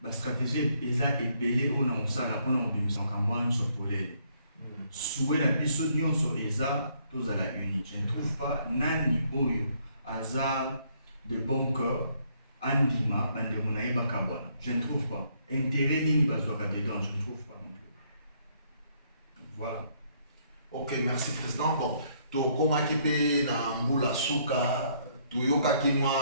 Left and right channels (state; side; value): inverted; both; correlation -0.69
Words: La stratégie est ébellée on a osala mpona kobimisa makambo wana nyonso polele souwe na biso nyonso eza tozala uni. Je ne trouve pas nani oyo aza de bon cœur andima bandeko na ye bakabwana. Je ne trouve pas intérêt nini bazwaka dedans, je ne trouve pas non plus. Voilà. Ok, merci président. Bon, tokomaki mpe na mbula suka toyokaki